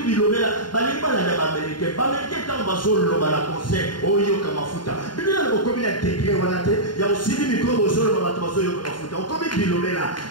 balingi balanda baamerikain baamerikain ntango bazoloba na konser oyoka mafuta biblia bokomi na degre wana te ya osili mikro bozoloba bato bazoyoka mafuta okomi bilobela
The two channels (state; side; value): late; right; 0.71 ms